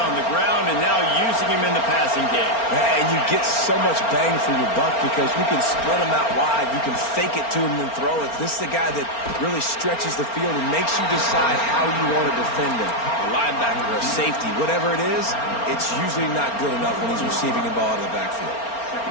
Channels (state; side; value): late; right; 4.4 ms